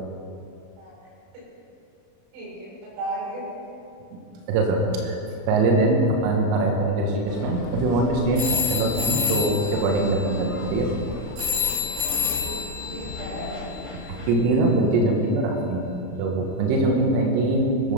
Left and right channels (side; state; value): left; late; 34 ms